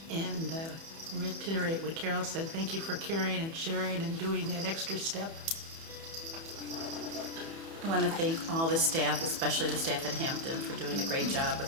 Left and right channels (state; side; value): late; left; 30 ms